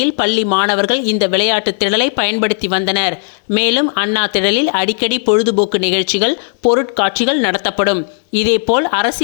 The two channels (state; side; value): silent; right; digital silence